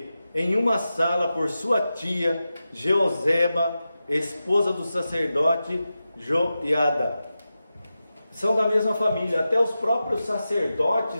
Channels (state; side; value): inverted; both; correlation -0.92